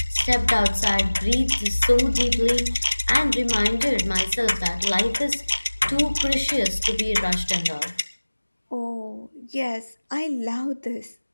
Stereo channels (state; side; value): inverted; both; correlation -1.00